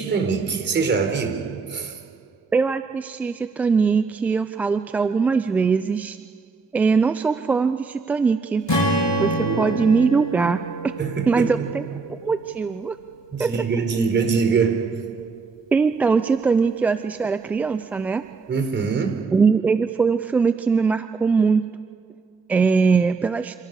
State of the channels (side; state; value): left; quieter; 4.6 dB